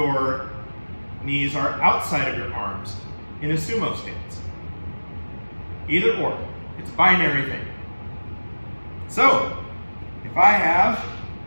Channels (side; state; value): both; inverted; correlation -1.00